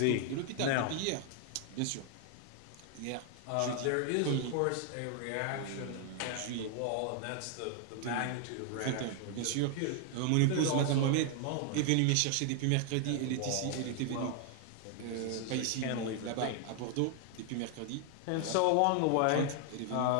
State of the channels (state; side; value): different; both; correlation 0.00